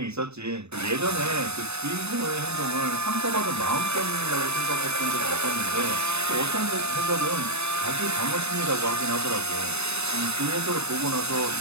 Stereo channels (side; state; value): left; late; 0.80 ms